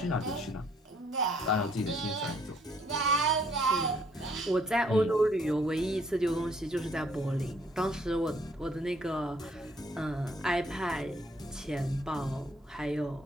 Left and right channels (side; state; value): both; normal; correlation 0.65